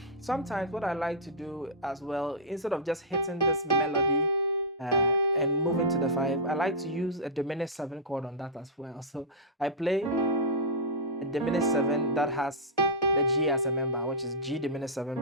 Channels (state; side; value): normal; both; correlation -0.11